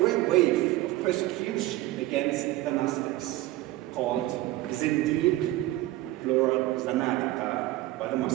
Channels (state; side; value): quieter; left; 17.1 dB